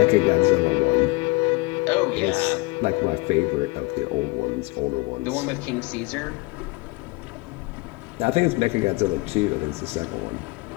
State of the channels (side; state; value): right; quieter; 24.7 dB